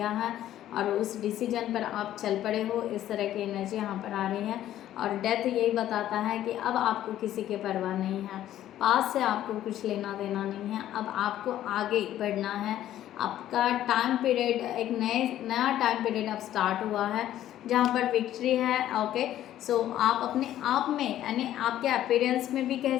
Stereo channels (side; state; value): right; quieter; 12.5 dB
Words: है और उस डिसीजन पर आप चल पड़े हो, इस तरह की एनर्जी यहाँ पर आ रही है। और डेथ यही बताता है कि अब आपको किसी की परवाह नहीं है, पास से आपको कुछ लेना देना नहीं है, अब आपको आगे बढ़ना है। आपका टाइम पीरियड, एक नया टाइम पीरियड अब स्टार्ट हुआ है जहाँ पर विक्ट्री है। ओके, सो आप अपने आप में, यानी आपके अपीयरेंस में भी कह